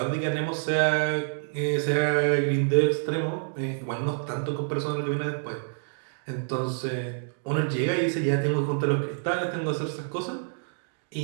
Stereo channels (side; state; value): left; silent; digital silence